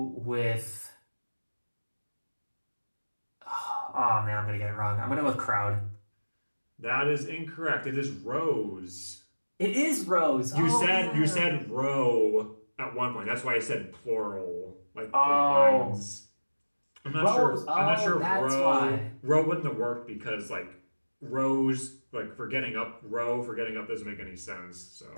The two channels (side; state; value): both; inverted; correlation -1.00